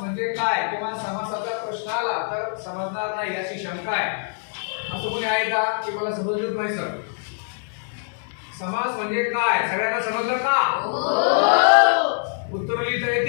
म्हणजे काय किंवा समासाचा प्रश्न आला तर समजणार नाही याची शंका आहे, असं कोणी आहे का की मला समजलंच नाही सर? समास म्हणजे काय सगळ्यांना समजलं का? उत्तर लिहिता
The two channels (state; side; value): silent; right; digital silence